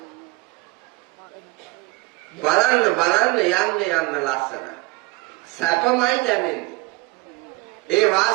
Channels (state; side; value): quieter; left; 22.6 dB